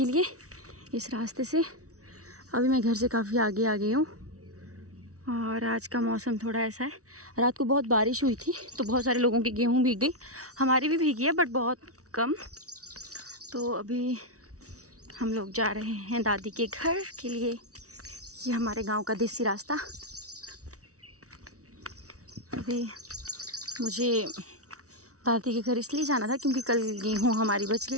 लिए इस रास्ते से। अभी मैं घर से काफ़ी आगे आ गई हूँ और आज का मौसम थोड़ा ऐसा है। रात को बहुत बारिश हुई थी तो बहुत सारे लोगों की गेहूँ भीग गई, हमारी भी भीगी है बट बहुत कम। तो अभी हम लोग जा रहे हैं दादी के घर के लिए। ये हमारे गांव का देसी रास्ता। अभी मुझे दादी के घर इसलिए जाना था क्योंकि कल गेहूँ हमारी बच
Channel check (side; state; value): left; late; 0.65 ms